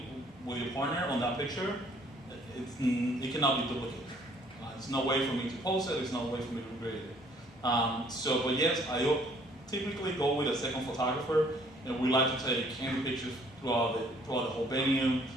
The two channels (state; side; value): normal; both; correlation 0.60